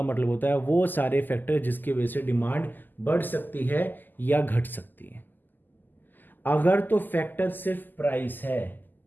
मतलब होता है वो सारे फैक्टर जिसकी वजह से डिमांड बढ़ सकती है या घट सकती है। अगर तो फैक्टर सिर्फ प्राइस है,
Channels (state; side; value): late; right; 0.088 ms